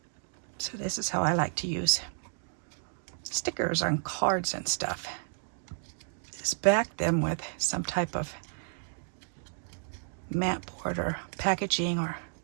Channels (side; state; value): left; silent; 57 dB below the other